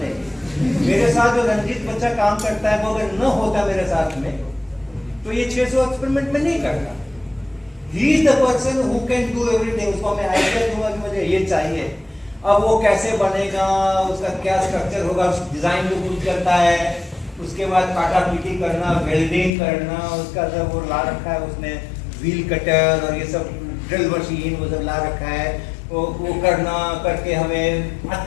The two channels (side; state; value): right; drops out; at 19.5 s